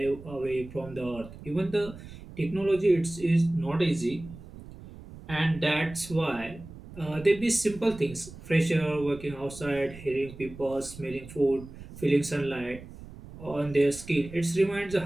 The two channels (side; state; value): right; noise; rumble, 16 dB below the sound